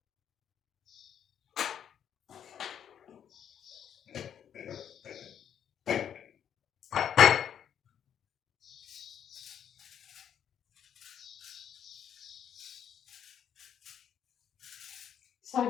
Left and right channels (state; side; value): quieter; right; 9.0 dB